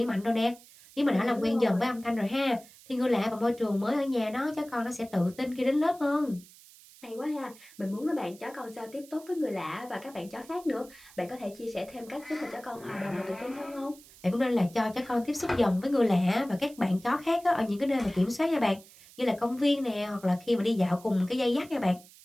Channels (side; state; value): right; noise; hiss, 22 dB below the sound